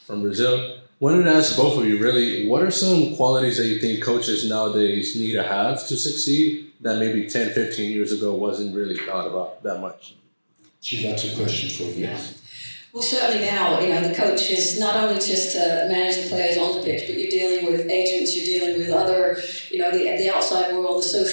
from Brazil. Wanted to ask both of you, really, what are some qualities that you think coaches nowadays need to have to succeed that maybe 10, 15 years ago wasn't really thought about that much? Gee, that's a question for you. Yeah. Well, certainly now, the coach is not only just to manage the players on the pitch, but you're dealing with agents, you're dealing with other, the outside world, the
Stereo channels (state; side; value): inverted; both; correlation -1.00